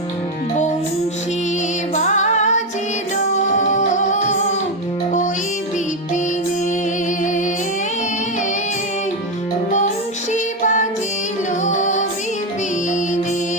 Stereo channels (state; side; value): normal; both; correlation 0.08